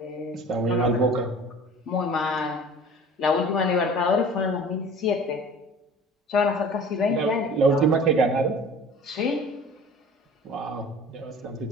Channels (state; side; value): normal; both; correlation 0.43